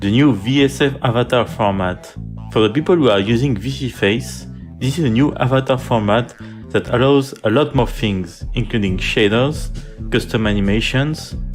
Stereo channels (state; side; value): identical; both; correlation 1.00